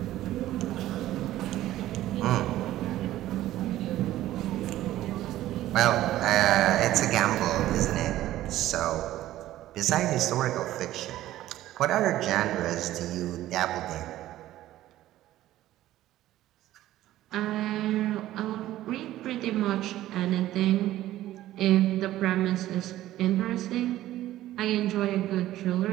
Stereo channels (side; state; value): left; quieter; 14.4 dB